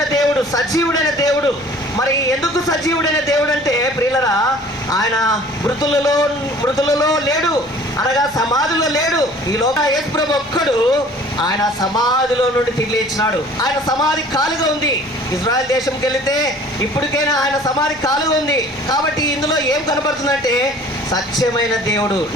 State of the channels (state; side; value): normal; both; correlation 0.49